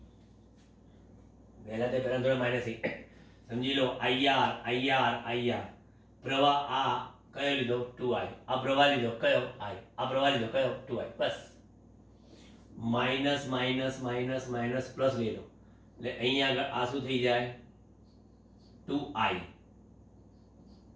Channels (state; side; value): identical; both; correlation 1.00